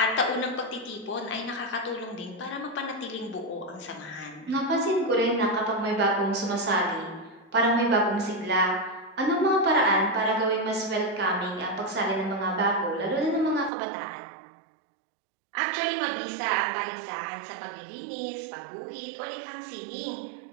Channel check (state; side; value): drops out; left; at 13.7 s